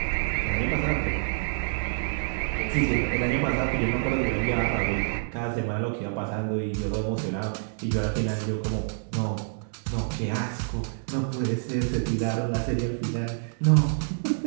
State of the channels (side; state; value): left; silent; digital silence